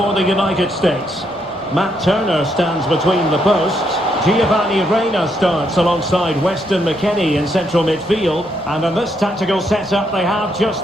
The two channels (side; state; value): both; normal; correlation 0.76